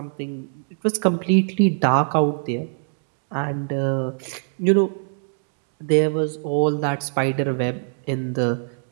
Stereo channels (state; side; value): silent; left; digital silence